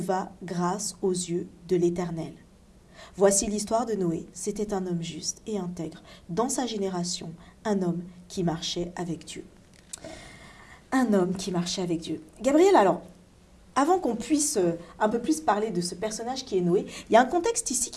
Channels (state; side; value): identical; both; correlation 1.00